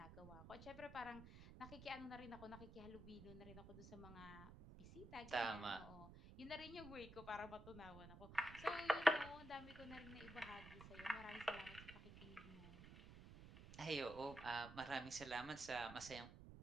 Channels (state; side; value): noise; right; rumble, 13 dB below the sound